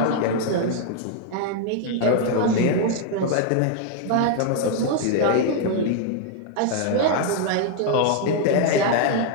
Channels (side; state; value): both; different; correlation 0.00